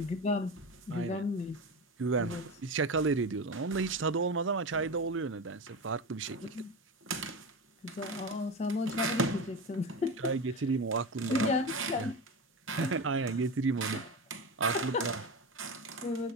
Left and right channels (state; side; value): normal; both; correlation 0.23